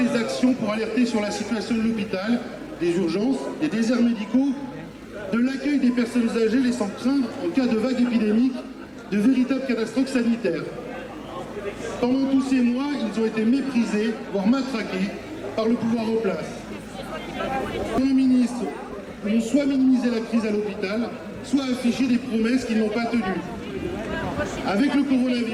les actions pour alerter sur la situation de l'hôpital, des urgences, des déserts médicaux, de l'accueil des personnes âgées, laissant craindre, en cas de vague épidémique, de véritables catastrophes sanitaires. Pendant tous ces mois, ils ont été méprisés, voire matraqués, par le pouvoir en place. Les ministres ont soit minimisé la crise à l'hôpital, soit affiché des promesses qu'ils n'ont pas tenues. Avec le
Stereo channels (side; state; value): both; identical; correlation 1.00